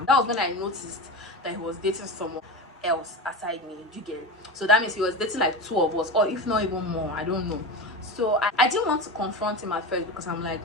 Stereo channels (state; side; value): normal; both; correlation 0.25